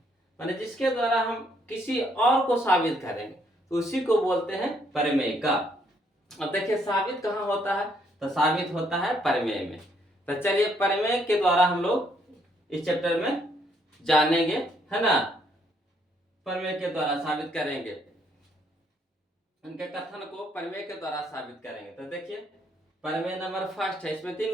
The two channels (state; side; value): normal; both; correlation 0.70